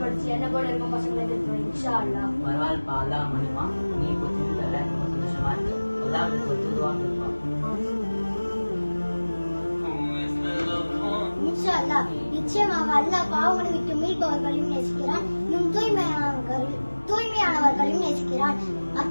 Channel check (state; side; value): inverted; both; correlation -1.00